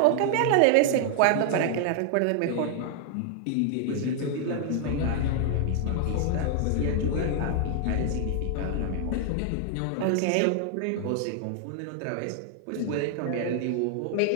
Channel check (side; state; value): both; different; correlation 0.00